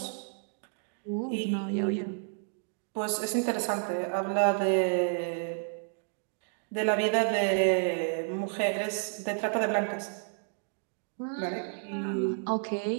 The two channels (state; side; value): silent; left; 57 dB below the other